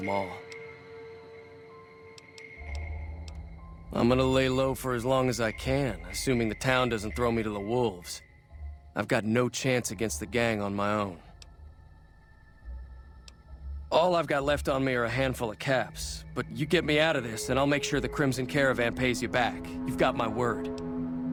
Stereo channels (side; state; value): both; identical; correlation 1.00